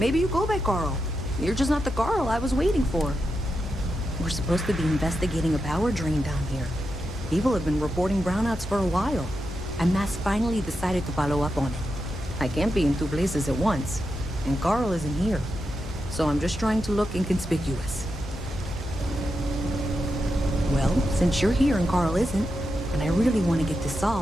you go by Carl. You're just not the Carl I was waiting for. We're supposed to be investigating a power drain down here. People have been reporting brownouts for a while, and Mass finally decided to follow up on it. I can't be in two places at once, and Carl isn't here. So I'm just trying to look inconspicuous. Well, since you're here and Carl isn't, and I really want to get this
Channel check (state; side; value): normal; both; correlation 0.87